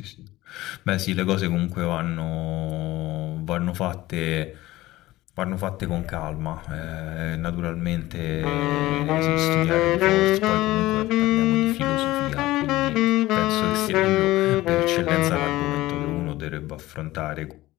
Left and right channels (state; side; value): quieter; right; 17.4 dB